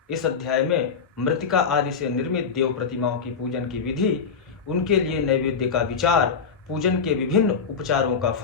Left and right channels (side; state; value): right; quieter; 5.9 dB